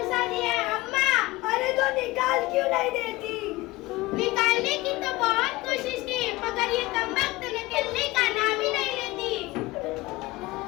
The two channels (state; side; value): quieter; right; 20.2 dB